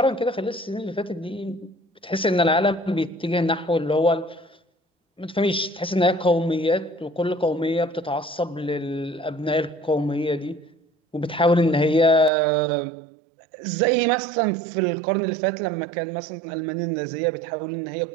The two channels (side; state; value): left; drops out; at 12.3 s